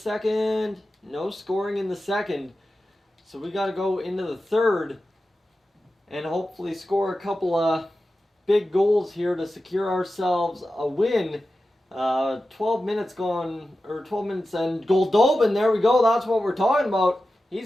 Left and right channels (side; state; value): both; normal; correlation 0.93